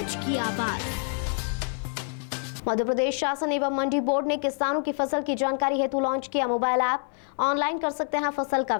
की आवाज। मध्य प्रदेश शासन एवं मंडी बोर्ड ने किसानों की फसल की जानकारी हेतु लॉन्च किया मोबाइल ऐप। ऑनलाइन कर सकते हैं फसल का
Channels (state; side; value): silent; right; 56 dB below the other